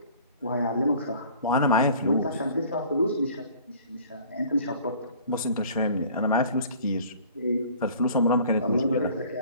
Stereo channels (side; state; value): both; inverted; correlation -0.49